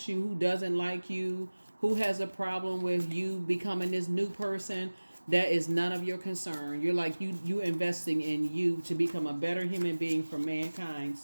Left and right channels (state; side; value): inverted; both; correlation -1.00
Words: you, who doesn't like you, who has a problem with you becoming this new person, that is none of your concern. You're like, you investing in you to become a better human being for mankind.